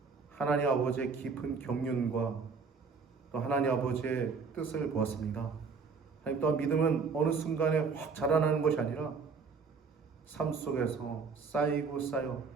하나님 아버지의 깊은 경륜과 또 하나님 아버지의 뜻을 보았습니다. 하나님 또한 믿음은 어느 순간에 확 자라나는 것이 아니라 삶 속에서 쌓이고 쌓여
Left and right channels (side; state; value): left; quieter; 5.1 dB